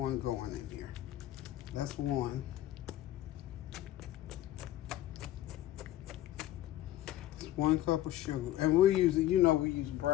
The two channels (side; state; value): right; quieter; 14.0 dB